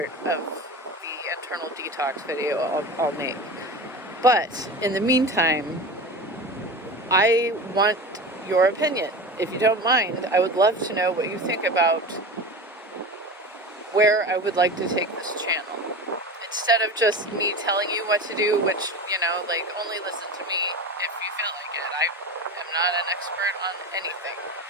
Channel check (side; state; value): both; normal; correlation 0.29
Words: of the internal detox video I'll make. But in the meantime, I want your opinion. If you don't mind, I would love to know what you think about where I would like to take this channel. Instead of just me telling you what to do, which, only listen to me if you feel like it. I am not an expert on anything,